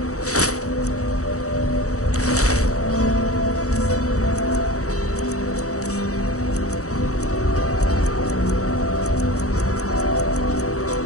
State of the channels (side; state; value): right; late; 0.65 ms